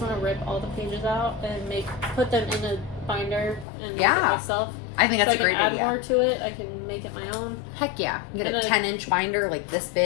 to rip all the pages out and put them in a binder and make it myself. I think that's a great idea. I can add more to it. I can make it my own. Heck yeah. You get a 10-inch binder like this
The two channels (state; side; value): drops out; right; at 3.7 s